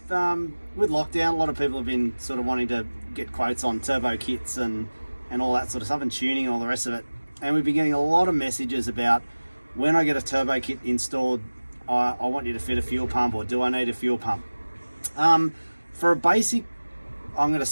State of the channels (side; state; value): both; inverted; correlation -1.00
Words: lockdown, a lot of people have been sort of wanting to get quotes on turbo kits and all that sort of stuff, and tuning and all the rest of it. And we've been getting a lot of messages about when I get a turbo kit installed, I want you to fit a fuel pump, or do I need a fuel pump? For a basic, I'm going to